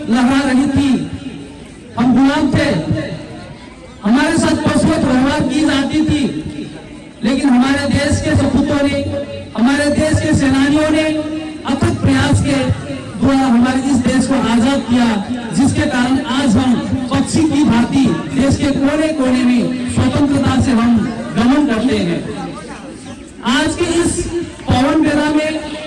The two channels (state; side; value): identical; both; correlation 1.00